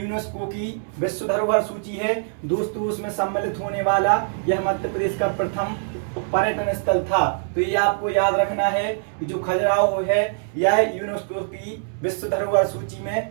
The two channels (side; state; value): left; silent; digital silence